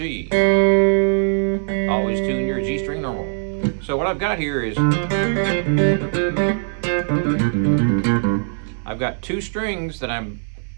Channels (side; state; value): left; silent; 62 dB below the other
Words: Always tune your G string normal. So what I've got here is, I've got 2 strings that I'm